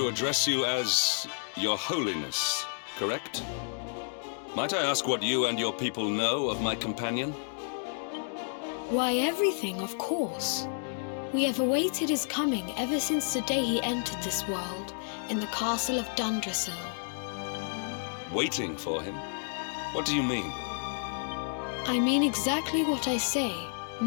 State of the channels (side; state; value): right; silent; digital silence